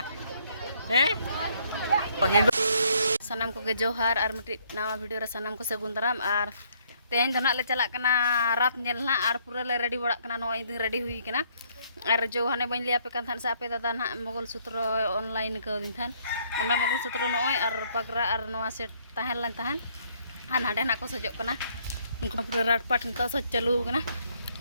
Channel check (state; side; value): inverted; both; correlation -0.67